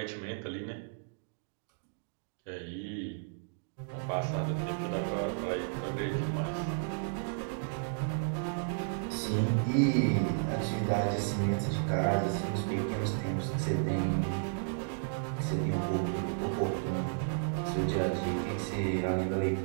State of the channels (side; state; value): left; silent; digital silence